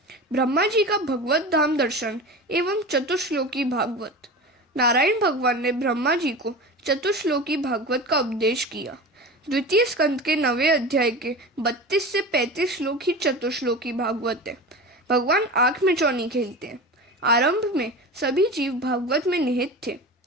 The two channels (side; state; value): both; normal; correlation 0.31